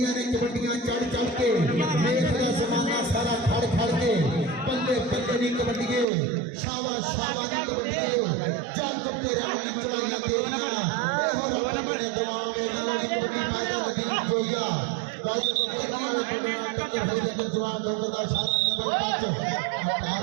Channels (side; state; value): left; drops out; at 6.1 s